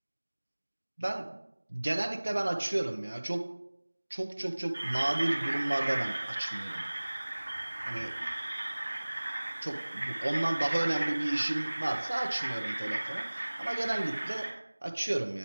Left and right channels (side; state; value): both; inverted; correlation -1.00